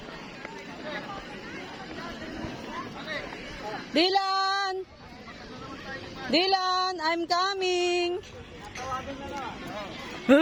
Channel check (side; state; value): both; identical; correlation 1.00